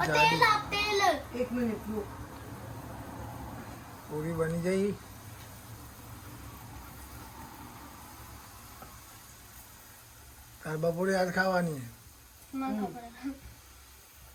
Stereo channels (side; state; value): both; identical; correlation 1.00